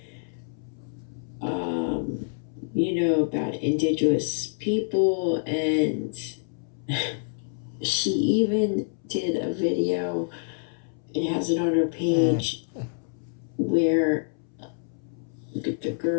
about indigenous people. And she even did a video, it has it on her page, where the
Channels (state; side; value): silent; right; 60 dB below the other